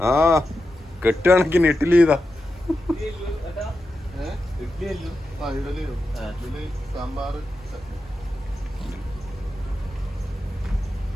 ആ കെട്ടുകണക്കിന് ഇഡ്ഡലി. ഇതാ സാമ്പാർ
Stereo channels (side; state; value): both; normal; correlation 0.89